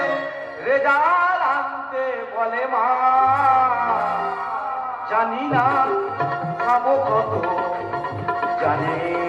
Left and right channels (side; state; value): both; identical; correlation 1.00